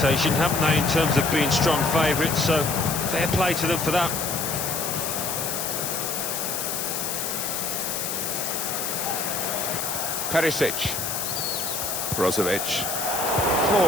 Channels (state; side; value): noise; left; hiss, 2 dB below the sound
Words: haven't they, in terms of being strong favourites, so fair play to them for that. Perisic. Brozovic.